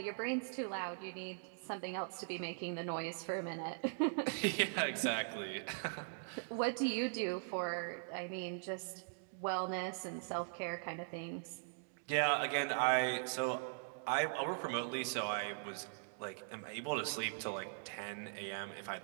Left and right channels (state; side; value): silent; left; digital silence